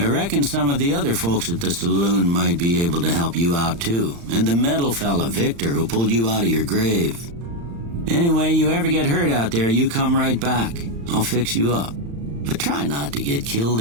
reckon some of the other folks at the saloon might be able to help you out too. And the metal fella, Victor, who pulled you out of your grave. Anyway, you ever get hurt out there, you come right back. I'll fix you up. But try not to get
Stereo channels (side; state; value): left; late; 35 ms